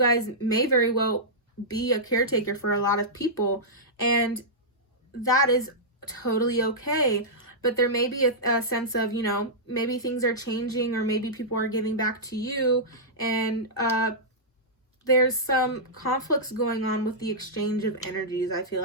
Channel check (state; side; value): normal; both; correlation -0.12